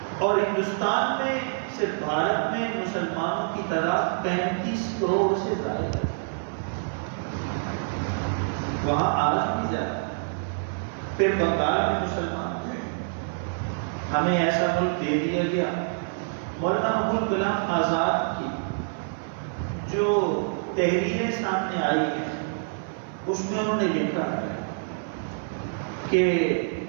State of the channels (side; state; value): left; silent; 59 dB below the other